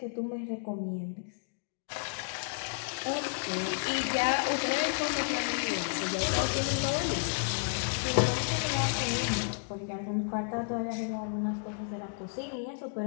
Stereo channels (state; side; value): silent; right; digital silence